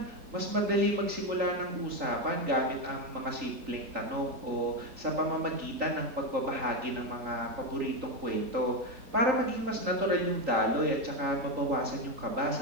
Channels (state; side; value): late; left; 3.8 ms